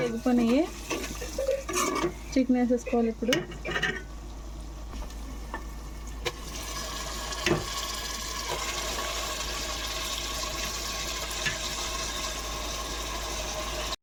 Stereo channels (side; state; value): both; identical; correlation 1.00